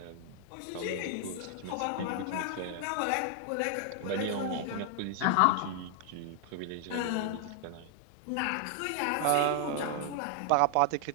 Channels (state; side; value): different; both; correlation 0.00